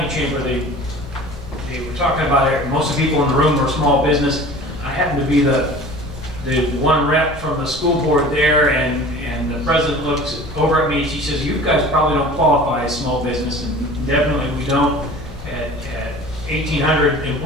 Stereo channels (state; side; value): normal; both; correlation 0.42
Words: Chamber, they were talking about it. Most of the people in the room were small business. I happened to be the one rep from the school board there, and the president looks over at me and she says, "You guys probably don't qualify as small business," and definitely we don't. At 1,800